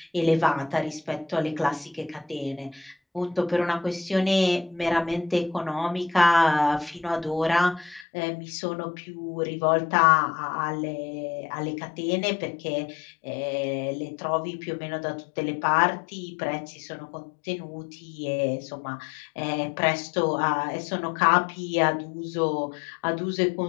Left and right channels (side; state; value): right; drops out; at 8.1 s